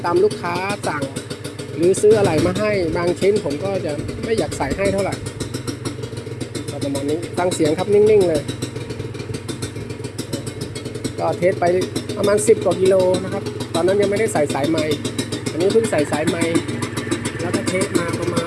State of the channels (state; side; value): identical; both; correlation 1.00